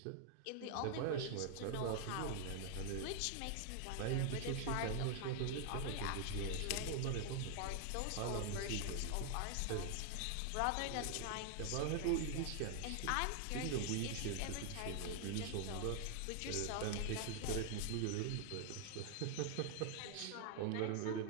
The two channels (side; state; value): both; different; correlation 0.00